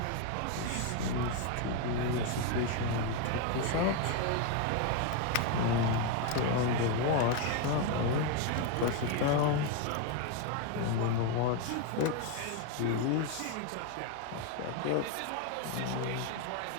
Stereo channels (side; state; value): both; different; correlation 0.01